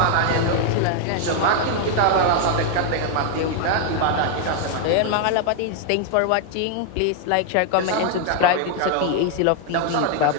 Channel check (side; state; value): both; different; correlation 0.00